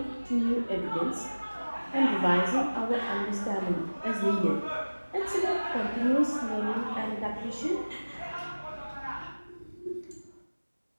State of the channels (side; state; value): both; inverted; correlation -1.00